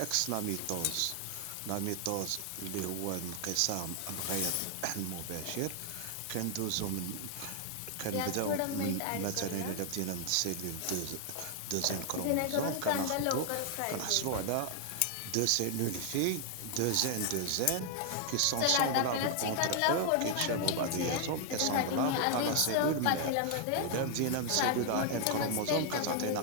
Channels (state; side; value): different; both; correlation 0.00